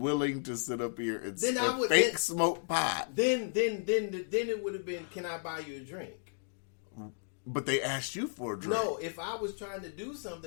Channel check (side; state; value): right; silent; digital silence